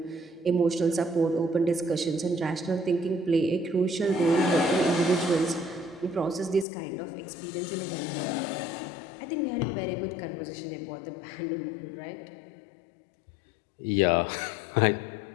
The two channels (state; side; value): drops out; right; at 6.7 s